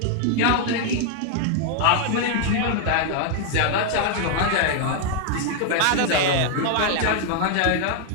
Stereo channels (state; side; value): different; both; correlation 0.00